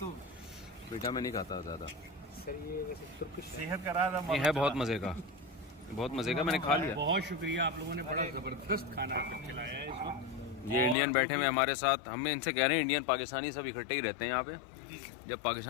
बेटा मैं नहीं खाता ज़्यादा, सेहत करा था, ये है बहुत मज़े का, बहुत मज़े का, मैंने खा लिया। बहुत शुक्रिया, आप लोगों ने बड़ा ज़बरदस्त खाना खिलाया है इस वक्त। ये इंडियन बैठे हुए हमारे साथ, हम इनसे कह रहे हैं इंडियन पाकिस्तानी सब इकट्ठे ही रहते हैं यहाँ पे। जब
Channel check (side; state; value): right; drops out; at 11.0 s